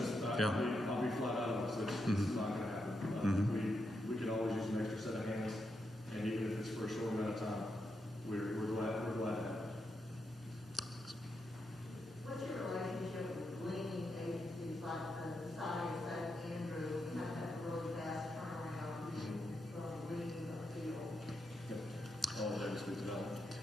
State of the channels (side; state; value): both; normal; correlation 0.84